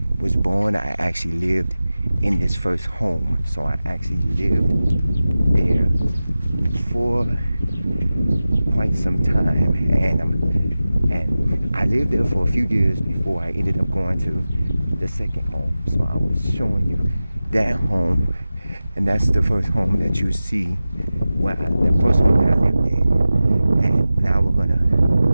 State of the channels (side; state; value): both; inverted; correlation -0.95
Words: was born, I actually lived in this first home. So I actually lived there for quite some time, and I lived there for a few years before I ended up going to the second home. So I was showing you that home, and that's the first home that you see, the first home that I lived in. And now we're gonna